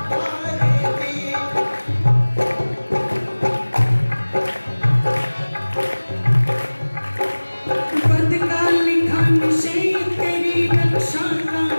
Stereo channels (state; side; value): inverted; both; correlation -1.00